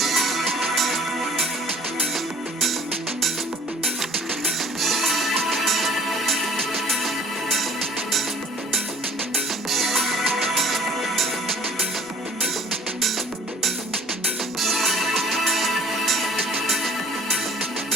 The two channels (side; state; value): both; normal; correlation 0.51